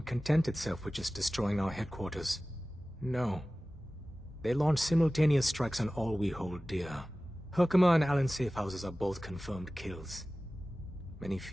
content itself with just destroying our headquarters. No. They launched simultaneous strikes on all we hold dear. Herkimer and Allen's safe houses are both confirmed kills. Many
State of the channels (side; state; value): both; normal; correlation 0.97